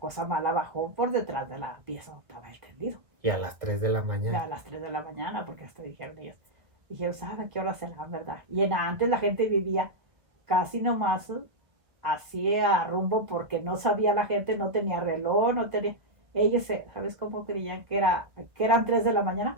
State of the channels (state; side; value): late; left; 1.5 ms